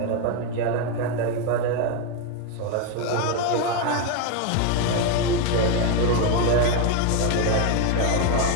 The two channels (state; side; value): different; both; correlation 0.02